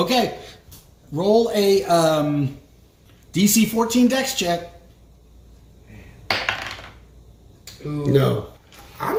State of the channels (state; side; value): identical; both; correlation 1.00